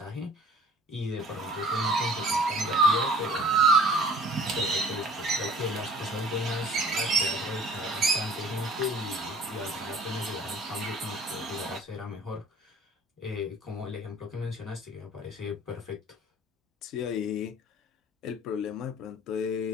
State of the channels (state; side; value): normal; both; correlation 0.50